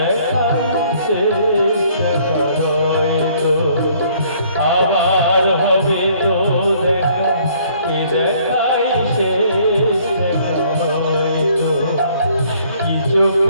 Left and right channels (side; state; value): both; inverted; correlation -0.61